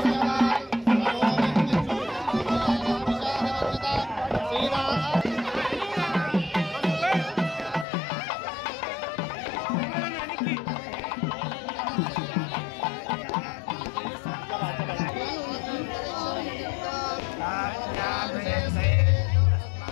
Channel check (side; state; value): right; drops out; at 7.9 s